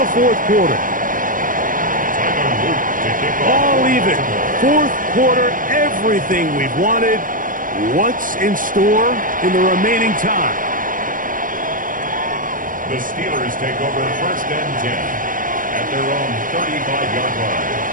4th quarter. All even. 4th quarter, everything we've wanted. What's in store in the remaining time? The Steelers take over 1st and 10 at their own 35-yard line.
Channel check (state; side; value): late; left; 0.39 ms